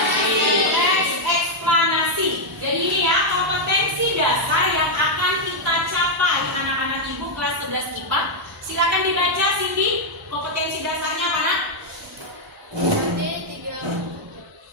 Eksplanasi. Jadi ini ya, kompetensi dasar yang akan kita capai anak-anak ibu kelas 11 IPA. Silakan dibaca Cindy, kompetensi dasarnya apa nak?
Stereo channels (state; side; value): normal; both; correlation -0.01